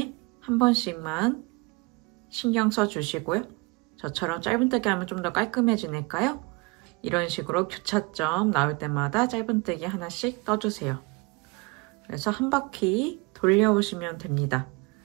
한 번씩만 신경 써주시고요. 저처럼 짧은뜨기 하면 좀 더 깔끔해지니까요. 이런 식으로 교차점 나올 때마다 짧은뜨기 하나씩 떠주세요. 그래서 한 바퀴 돌려오시면 됩니다.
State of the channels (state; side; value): quieter; left; 27.1 dB